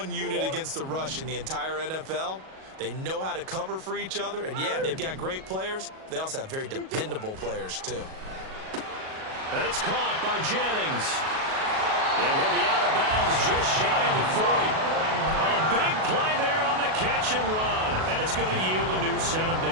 unit against the rush in the entire NFL. They know how to cover for each other, and yeah, they've got great players. They also have very dependable players, too. It's caught by Jennings. And he'll be out of bounds just shy of the 40. A big play there on the catch and run, and it's going to yield a new set of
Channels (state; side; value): late; left; 37 ms